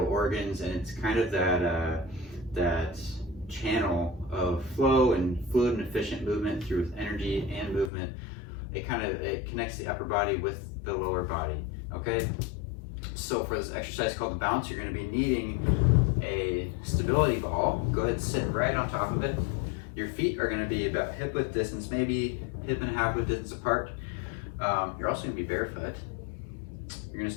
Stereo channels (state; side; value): drops out; right; at 7.9 s